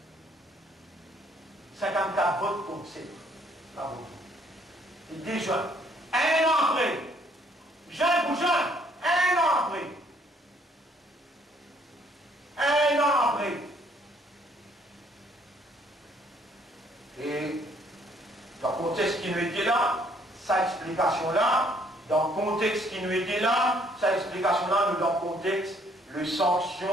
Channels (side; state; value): both; normal; correlation 0.64